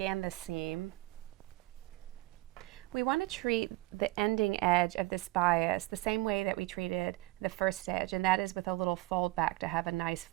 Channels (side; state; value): left; quieter; 20.3 dB